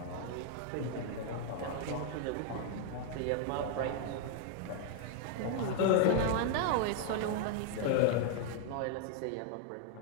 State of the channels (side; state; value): both; different; correlation 0.00